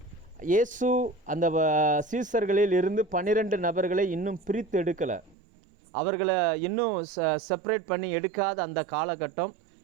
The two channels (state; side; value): drops out; left; at 5.4 s